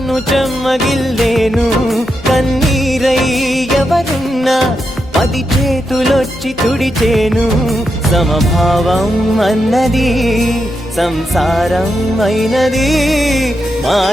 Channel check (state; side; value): normal; both; correlation 0.85